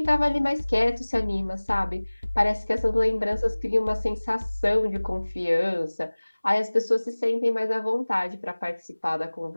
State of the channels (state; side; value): inverted; both; correlation -1.00